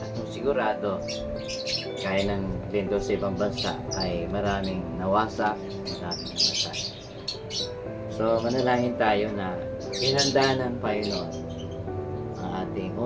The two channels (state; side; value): identical; both; correlation 1.00